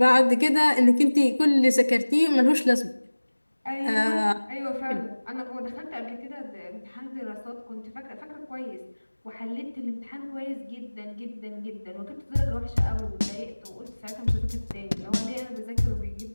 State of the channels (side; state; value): both; inverted; correlation -1.00